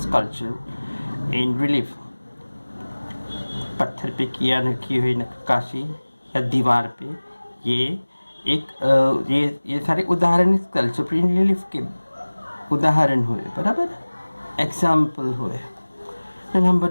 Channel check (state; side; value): inverted; both; correlation -1.00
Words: sculpture in relief. पत्थर पे की हुई नक्काशी या दीवार पे, ये सारे उदाहरण स्कल्पचर इन रिलीफ के उदाहरण हुए, बराबर, एग्जाम्पल हुए। Number